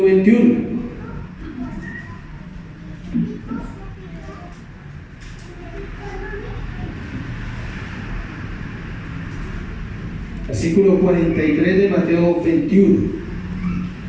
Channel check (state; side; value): identical; both; correlation 1.00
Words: 21. Versículo 43 de Mateo 21.